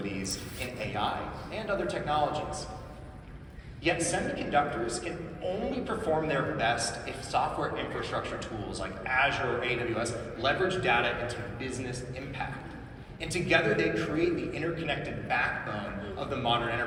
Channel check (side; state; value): both; identical; correlation 1.00